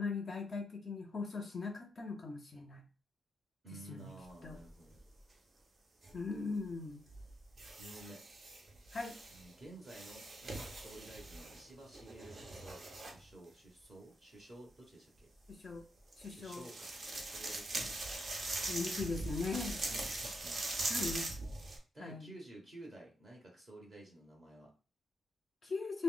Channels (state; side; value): normal; both; correlation 0.81